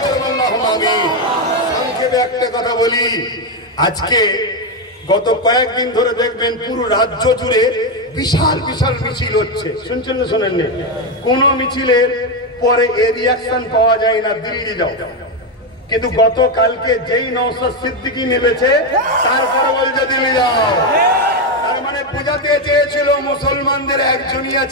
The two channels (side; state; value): both; normal; correlation 0.08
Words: জোরে আল্লাহুম্মা আমিন। সংক্ষেপে একটা কথা বলি, আজকে গত কয়েকদিন ধরে দেখবেন পুরো রাজ্য জুড়ে বিশাল বিশাল মিছিল হচ্ছে। শুনছেন না শোনেননি? কোন মিছিলের পরে এর রিয়াকশন পাওয়া যায় না, দিল্লি যাও। কিন্তু গতকালকে যেই নওশাদ সিদ্দিকী নেমেছে তারপরে বলছে দিল্লি যাও। তার মানে বোঝাতে চেয়েছিল মুসলমানদের একজনই